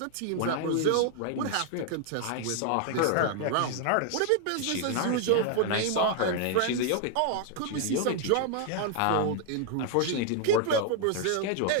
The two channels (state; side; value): different; both; correlation 0.00